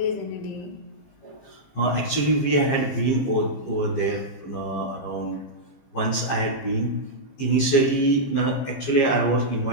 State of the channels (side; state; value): right; late; 15 ms